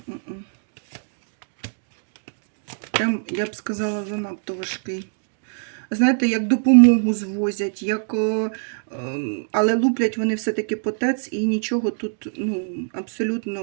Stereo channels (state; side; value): silent; left; 63 dB below the other